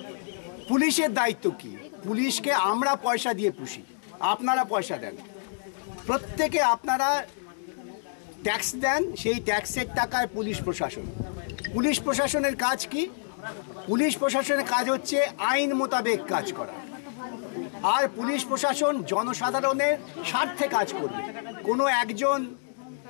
পুলিশের দায়িত্ব কি? পুলিশকে আমরা পয়সা দিয়ে পুষি, আপনারা পয়সা দেন, প্রত্যেকে আপনারা ট্যাক্স দেন, সেই ট্যাক্সের টাকায় পুলিশ প্রশাসন। পুলিশ প্রশাসনের কাজ কি? পুলিশ প্রশাসনের কাজ হচ্ছে আইন মোতাবেক কাজ করা। আর পুলিশ প্রশাসন জনসাধারণের স্বার্থে কাজ করবে। কোনো একজন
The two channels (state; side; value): silent; right; digital silence